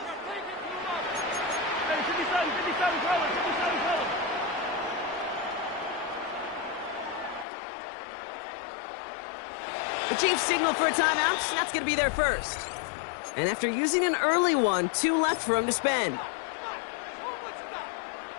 The Chiefs signal for a timeout. That's going to be their first. And after using an early one, 2 left for him to spend.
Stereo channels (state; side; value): drops out; right; at 7.5 s